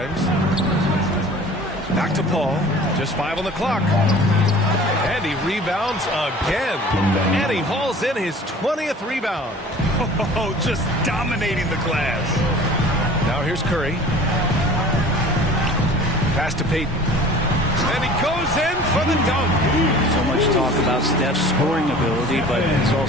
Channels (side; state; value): both; normal; correlation 0.44